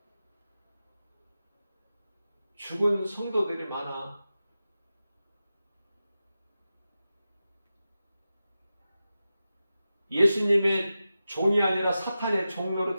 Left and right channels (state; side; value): inverted; both; correlation -0.93